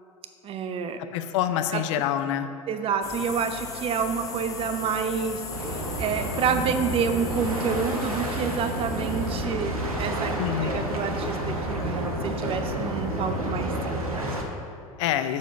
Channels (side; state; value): both; normal; correlation 0.20